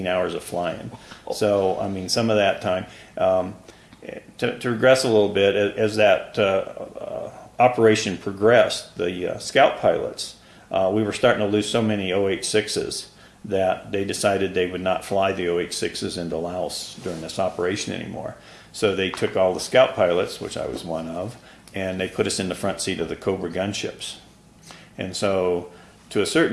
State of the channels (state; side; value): identical; both; correlation 1.00